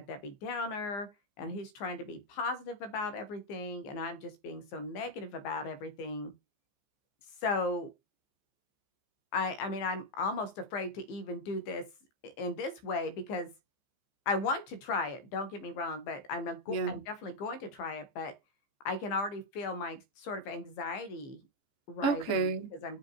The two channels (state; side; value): late; right; 14 ms